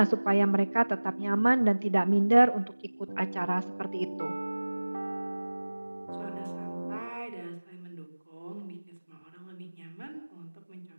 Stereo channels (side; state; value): both; inverted; correlation -1.00